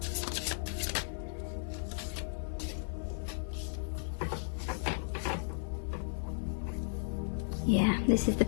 Yeah, this is the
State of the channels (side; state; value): right; silent; digital silence